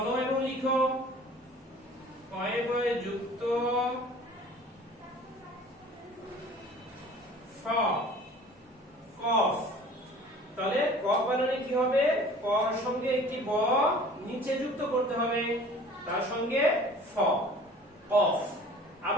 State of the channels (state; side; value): normal; both; correlation 0.47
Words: এবং লিখো কয়ে বয়ে যুক্ত ফ, কফ। তাহলে কফ বানানে কি হবে? কর সঙ্গে একটি ব নিচে যুক্ত করতে হবে, তার সঙ্গে ফ, কফ।